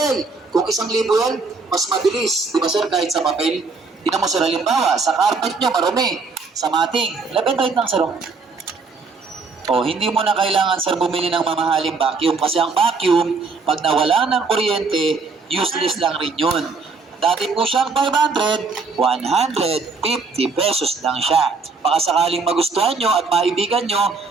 Kung 1,000 yan, mas mabilis. Di ba sir, kahit sa papel? Tingnan mo sir, halimbawa, sa carpet niyo, marumi. Sa mating, left and right lang sir. Oh, hindi mo na kailangan sir bumili ng mamahaling vacuum kasi ang vacuum, pag nawala ng kuryente, useless lang rin yun. Dati po siyang 500, 150 pesos lang siya. Baka sakaling magustuhan nyo at maibigan nyo,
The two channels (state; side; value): quieter; left; 4.3 dB